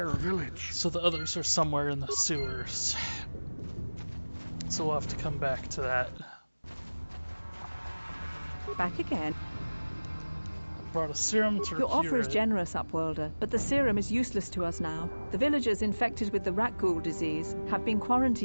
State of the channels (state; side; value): inverted; both; correlation -1.00